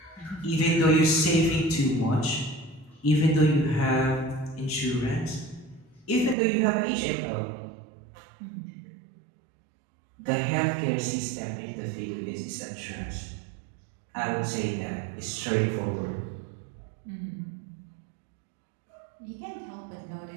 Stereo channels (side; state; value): left; drops out; at 6.4 s